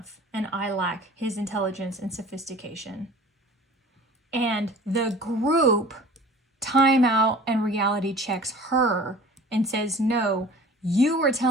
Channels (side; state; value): both; normal; correlation 0.44